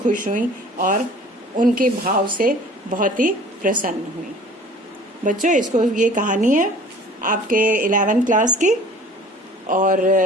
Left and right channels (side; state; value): both; normal; correlation 0.48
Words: हुई और उनके भाव से बहुत ही प्रसन्न हुई। बच्चों, ये कहानी है आपके 11th क्लास की, और